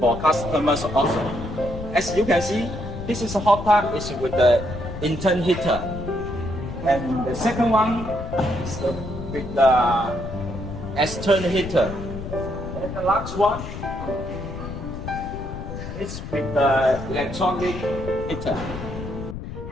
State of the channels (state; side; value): noise; left; rumble, 8 dB below the sound